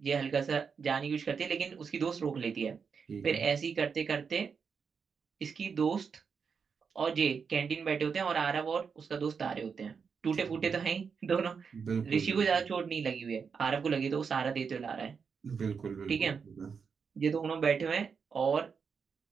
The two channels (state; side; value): quieter; left; 6.0 dB